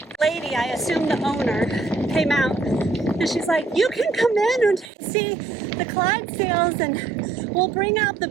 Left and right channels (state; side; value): drops out; left; at 4.9 s